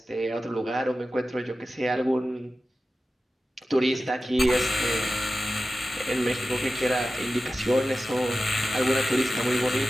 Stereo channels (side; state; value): both; normal; correlation 0.93